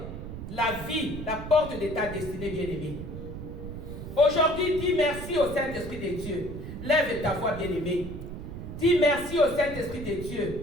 la vie, la porte de ta destinée, bien-aimée. Aujourd'hui, dis merci au Saint-Esprit de Dieu. Lève ta voix, bien-aimée. Dis merci au Saint-Esprit de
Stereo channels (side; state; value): right; noise; rumble, 9 dB below the sound